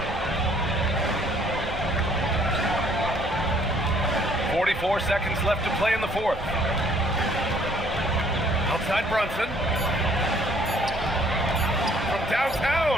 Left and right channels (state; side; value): normal; both; correlation 0.61